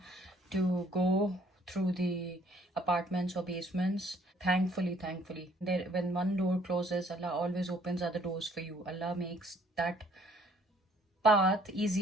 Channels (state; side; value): normal; both; correlation 0.61